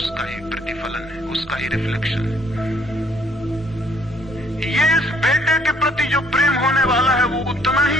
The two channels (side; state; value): both; normal; correlation 0.64